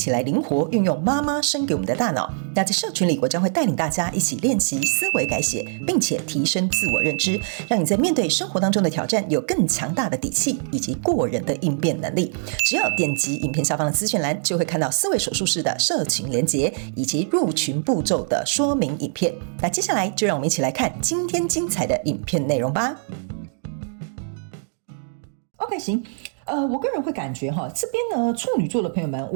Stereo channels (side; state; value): left; silent; digital silence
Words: 来灵活运用妈妈生给我们的大脑。那在社群里，我将会带领大家一起练习思维改写，并且提升自我认知，让你在面对生活当中的挑战有更强大的底气以及过人的应变能力。只要点击影片下方的资讯栏，就会看到思维手术室的社群连结以及入群步骤的说明影片。那接下来就让我们一起来看今天精彩的影片内容吧。OK， 行。我个人会感觉这边呢，处女座的朋友们，